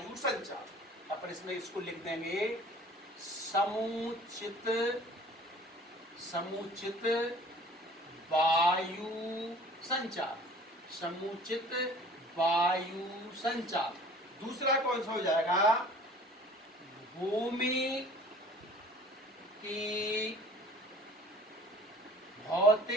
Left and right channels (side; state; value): both; normal; correlation 0.48